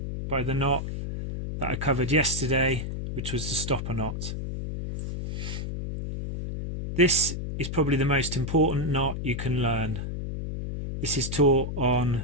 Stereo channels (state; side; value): noise; left; hum, 5 dB below the sound